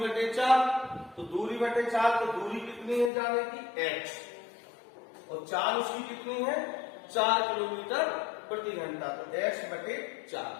4। तो दूरी बटे 4, तो दूरी कितनी है जाने की? x, और चाल उसकी कितनी है? 4 किलोमीटर प्रति घंटा। तो x बटे 4।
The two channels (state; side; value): drops out; right; at 3.1 s